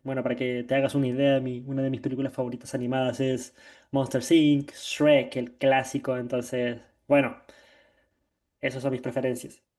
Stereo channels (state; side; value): identical; both; correlation 1.00